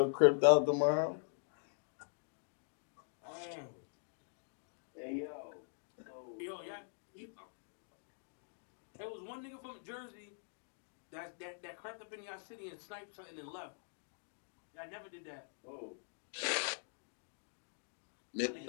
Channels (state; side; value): silent; right; digital silence